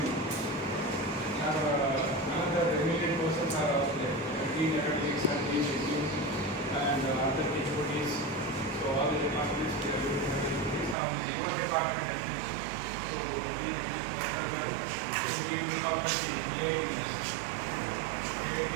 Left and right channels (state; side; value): drops out; left; at 11.0 s